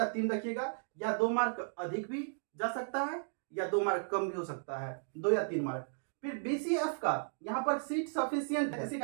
3 रखिएगा, या 2 मार्क अधिक भी जा सकता है या 2 मार्क कम भी हो सकता है, 2 या 3 मार्क। फिर बीसीएफ का यहाँ पर सीट सफिशियंट है, इसी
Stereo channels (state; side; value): silent; left; digital silence